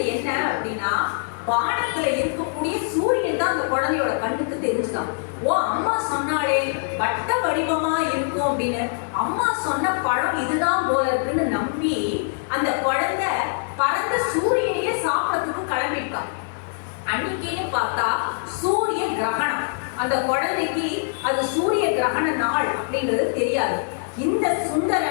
என்ன அப்படின்னா வானத்துல இருக்கக்கூடிய சூரியன் தான் அந்த குழந்தையோட கண்ணுக்கு தெரிஞ்சுதான். ஓ, அம்மா சொன்னாலே வட்ட வடிவமா இருக்கும் அப்படின்னு அம்மா சொன்ன பழம் இதுதான் போல இருக்குன்னு நம்பி அந்த குழந்தை பறந்த சூரியனையே சாப்பிடறதுக்கு கிளம்பிட்டான். அன்னைக்கே பார்த்தா சூரிய கிரகணம். அந்த குழந்தைக்கு அது சூரிய கிரகண நாள் அப்படின்றது தெரியாது. இந்த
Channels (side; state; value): right; silent; digital silence